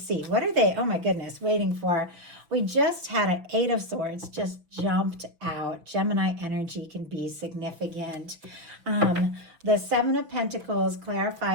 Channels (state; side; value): late; left; 6.0 ms